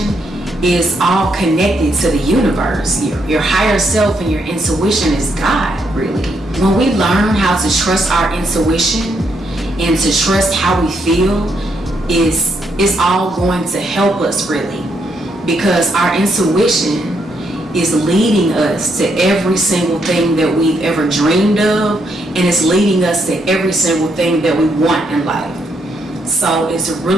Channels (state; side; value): normal; both; correlation 0.76